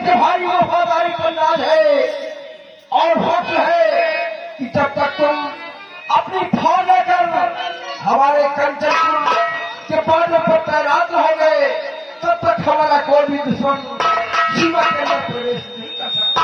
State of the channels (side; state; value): both; identical; correlation 1.00